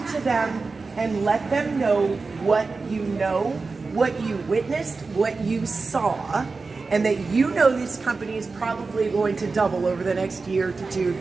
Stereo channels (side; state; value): left; quieter; 4.1 dB